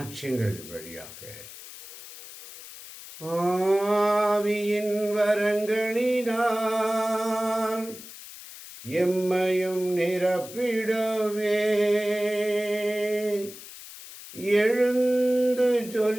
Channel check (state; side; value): noise; left; hiss, 15 dB below the sound